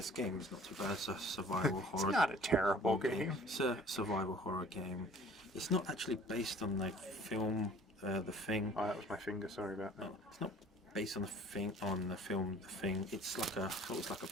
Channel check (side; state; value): both; normal; correlation 0.50